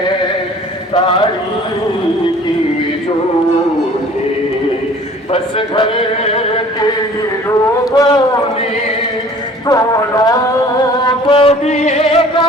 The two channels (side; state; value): both; normal; correlation 0.49